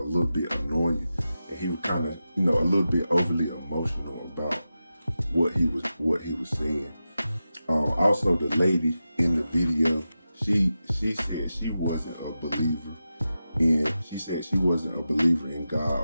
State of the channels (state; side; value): inverted; both; correlation -0.92